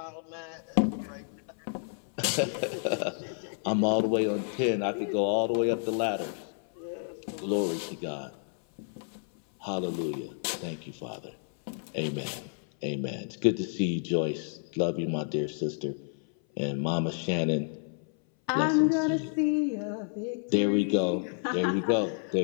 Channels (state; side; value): silent; right; 58 dB below the other